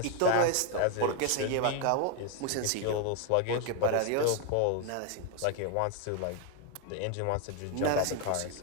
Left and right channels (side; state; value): both; different; correlation 0.01